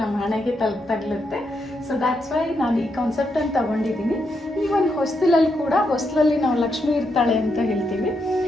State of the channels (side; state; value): both; normal; correlation 0.81